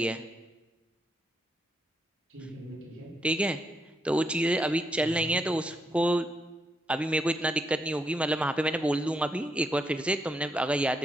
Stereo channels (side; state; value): both; normal; correlation 0.79